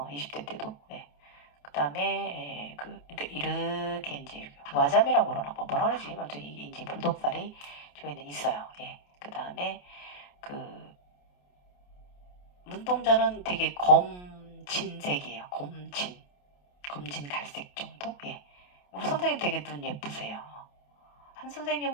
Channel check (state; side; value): late; right; 28 ms